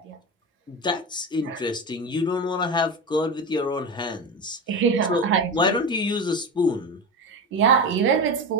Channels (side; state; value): both; normal; correlation 0.23